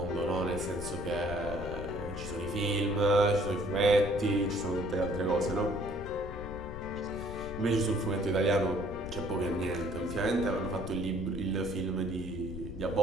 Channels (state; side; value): noise; left; rumble, 10 dB below the sound